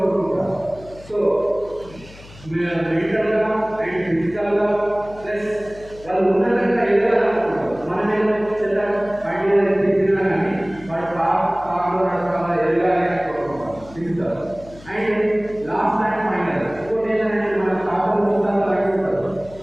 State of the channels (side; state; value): left; noise; hum, 20 dB below the sound